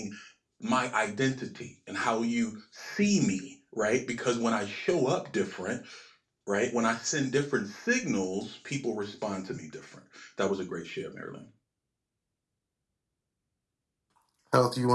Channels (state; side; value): identical; both; correlation 1.00